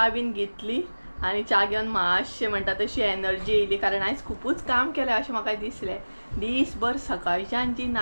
बीन घेतली आनी च्या घेवन मातशें म्हणटा तशी एनर्जी येयली कारण आयज खुबूच काम केलें अशें म्हाका दिसलें. दीसभर सकाळच्यान जी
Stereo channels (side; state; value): both; inverted; correlation -1.00